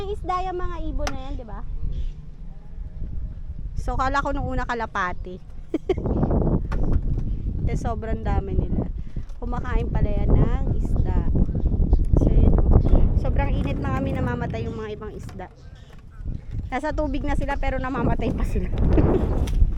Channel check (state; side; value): identical; both; correlation 1.00